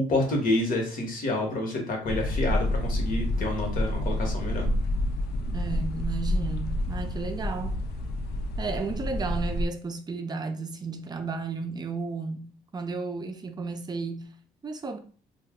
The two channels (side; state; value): both; normal; correlation 0.70